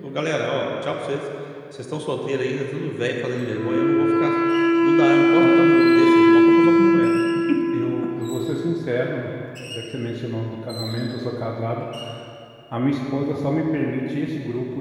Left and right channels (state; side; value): identical; both; correlation 1.00